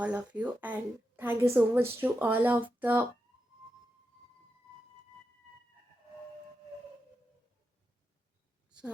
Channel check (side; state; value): both; normal; correlation 0.88